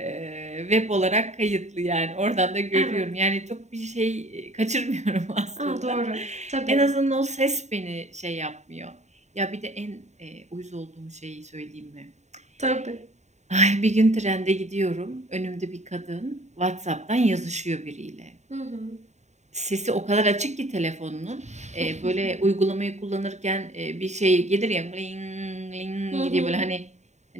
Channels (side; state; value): left; late; 0.33 ms